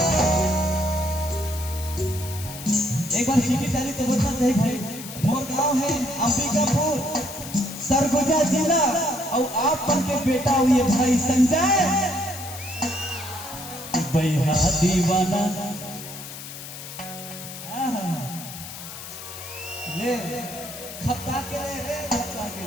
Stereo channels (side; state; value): left; noise; hiss, 11 dB below the sound